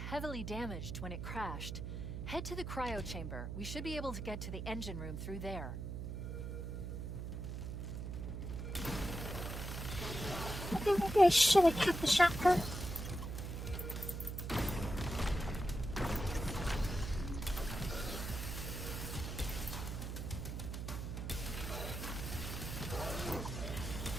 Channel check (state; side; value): noise; right; hum, 5 dB below the sound